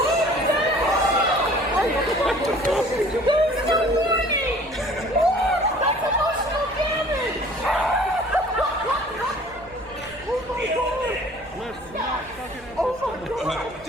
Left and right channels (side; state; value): right; noise; rumble, 22 dB below the sound